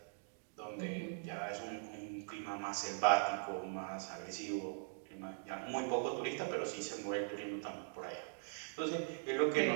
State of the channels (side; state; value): left; silent; digital silence